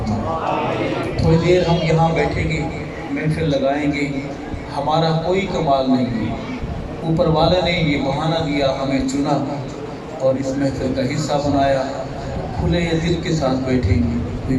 تھوڑی دیر ہم یہاں بیٹھیں گے، محفل لگائیں گے. ہمارا کوئی کمال نہیں ہے، اوپر والے نے یہ بہانہ دیا، ہمیں چنا اور اس محفل کا حصہ بنایا. کھلے دل کے ساتھ بیٹھیں گے، کوئی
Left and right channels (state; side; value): identical; both; correlation 1.00